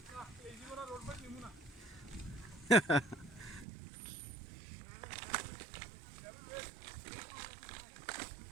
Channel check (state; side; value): drops out; left; at 3.7 s